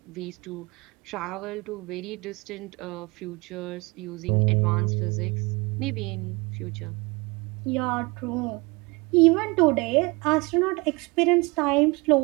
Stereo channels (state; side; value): quieter; left; 26.1 dB